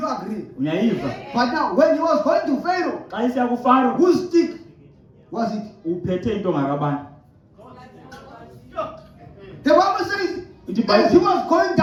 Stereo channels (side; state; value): both; identical; correlation 1.00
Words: agree? Uyayiva? But now when he was going to Pharaoh, Xa isiya kuFaro whose stick was it? uphethe intonga kabani? The Bible says ithi As he iBhayibhile was going